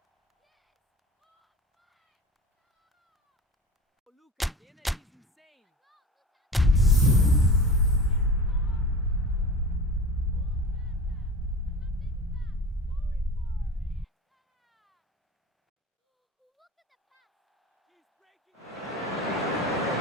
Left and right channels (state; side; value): normal; both; correlation 0.33